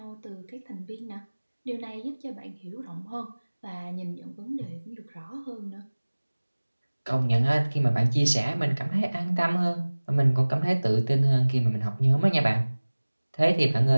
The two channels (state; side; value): inverted; both; correlation -1.00